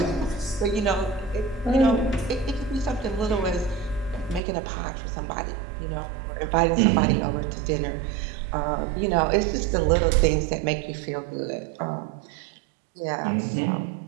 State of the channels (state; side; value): drops out; left; at 4.4 s